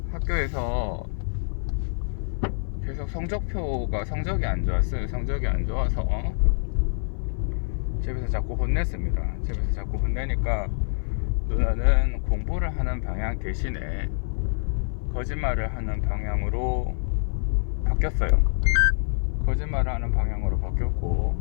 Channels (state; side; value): silent; right; 57 dB below the other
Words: 학교에서 계속 성적이 안 좋았어요. 성적이 안 좋아서 집에서 자꾸 혼냈습니다. 집에서 자꾸 혼내니까 누나는 공부를 하는 방향 대신에 거짓말을 하는 방향으로 바뀌었어요. 거짓말을 하는 방향으로